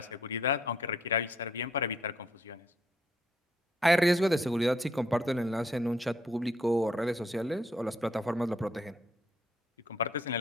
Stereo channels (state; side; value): normal; both; correlation 0.70